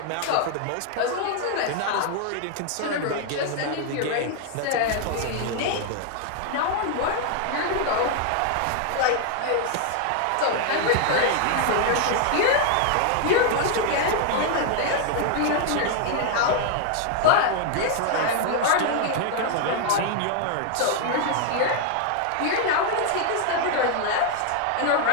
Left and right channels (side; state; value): both; different; correlation 0.00